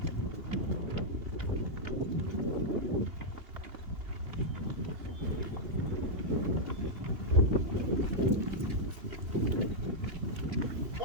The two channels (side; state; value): left; late; 3.0 ms